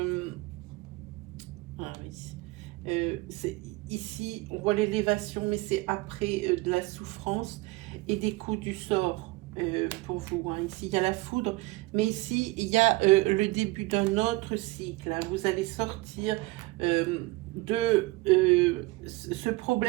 ah oui, ici, on voit l'élévation, mais c'est après de la souffrance et des coups du sort. Pour vous, hein. Ici il y a la foudre, mais ici il y a le début d'un autre cycle, hein. Vous allez sortir de ce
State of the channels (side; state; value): left; quieter; 21.7 dB